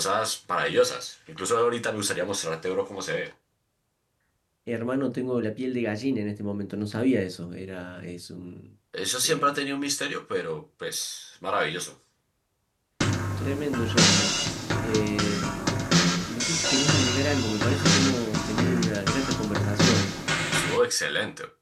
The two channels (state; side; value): identical; both; correlation 1.00